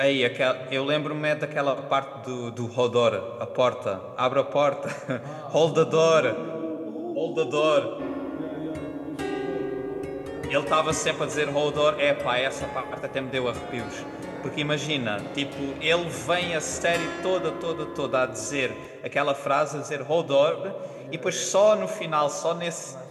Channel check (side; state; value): both; identical; correlation 1.00